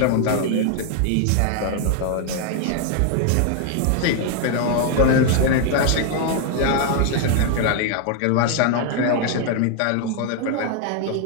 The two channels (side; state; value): both; different; correlation 0.00